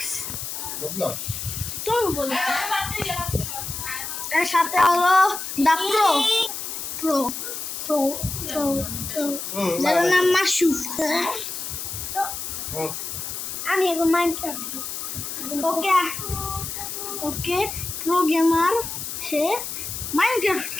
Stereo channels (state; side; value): noise; left; hiss, 6 dB below the sound